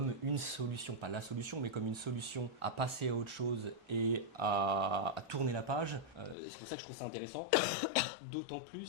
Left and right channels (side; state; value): right; drops out; at 6.4 s